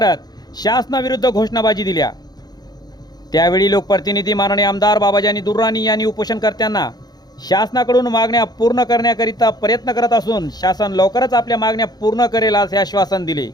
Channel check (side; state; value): right; late; 0.19 ms